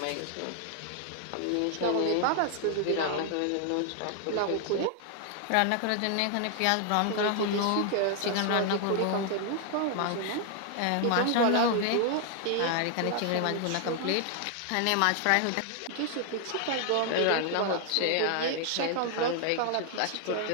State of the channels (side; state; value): both; different; correlation 0.00